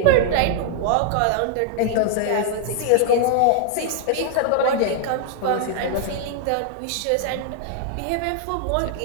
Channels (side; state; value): both; different; correlation 0.00